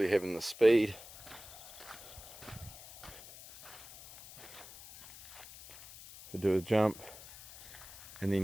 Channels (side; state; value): left; noise; hiss, 17 dB below the sound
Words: having the speed to do a jump, and